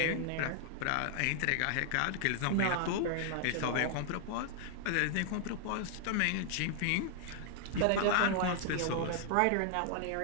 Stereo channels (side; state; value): both; different; correlation 0.00